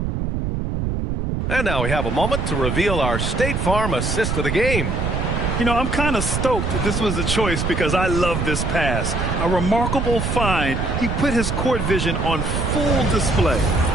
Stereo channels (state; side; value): noise; right; rumble, 1 dB below the sound